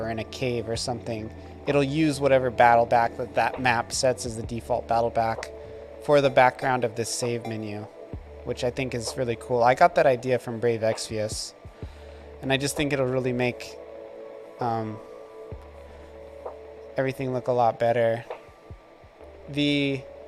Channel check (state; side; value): identical; both; correlation 1.00